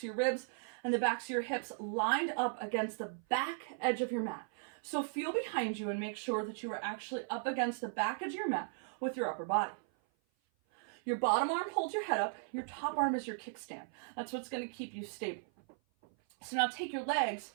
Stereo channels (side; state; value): left; silent; 53 dB below the other